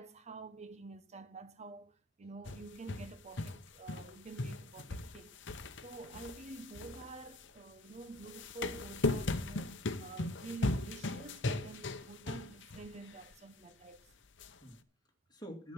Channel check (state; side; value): normal; both; correlation 0.51